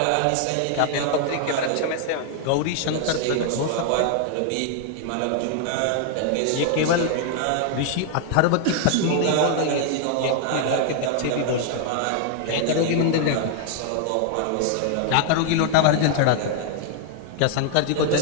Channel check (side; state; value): both; different; correlation 0.00